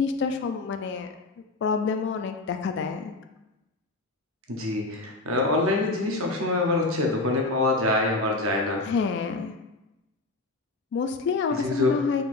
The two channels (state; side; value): quieter; right; 3.1 dB